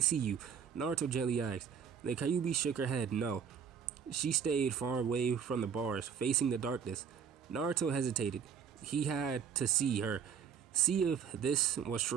you, Naruto gently asked. The Kyuubi shook her head, no. She stayed far away from the bars, facing the darkness. Naruto hesitated. He had to see her, see if this was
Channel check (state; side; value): quieter; left; 7.3 dB